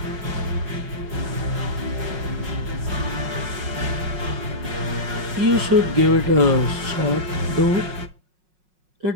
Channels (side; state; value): left; late; 5.5 ms